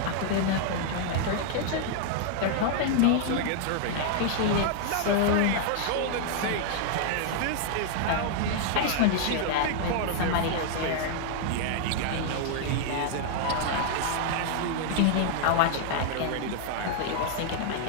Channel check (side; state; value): both; different; correlation -0.01